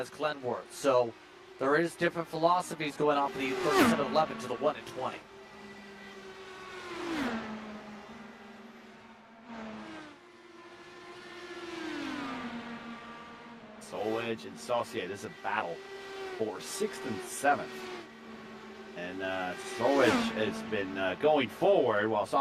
Glenworth. So there is different philosophies going on for the 37-11 to the 1 and 20. Solwedge and Saucier, this is a battle for 6th and 7th. And Solwedge has been going forward while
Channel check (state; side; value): identical; both; correlation 1.00